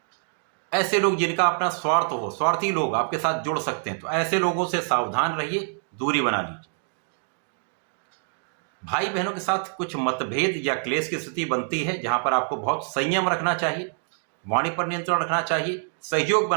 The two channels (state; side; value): silent; left; 61 dB below the other